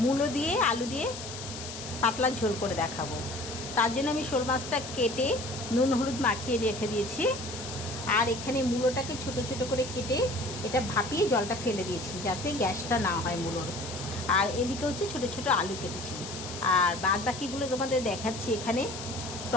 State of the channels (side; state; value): left; noise; hiss, 10 dB below the sound